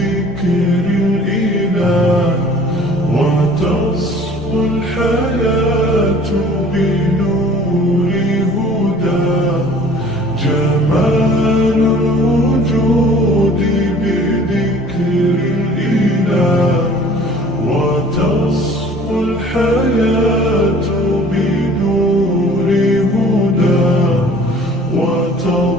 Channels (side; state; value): both; normal; correlation 0.49